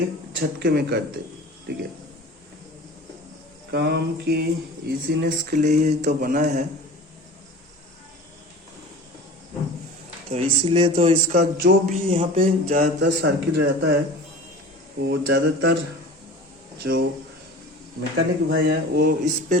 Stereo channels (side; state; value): both; normal; correlation 0.38